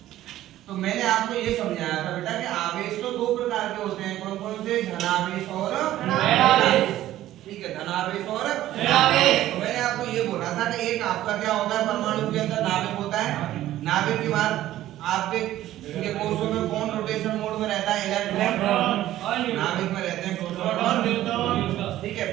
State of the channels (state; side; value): quieter; left; 13.9 dB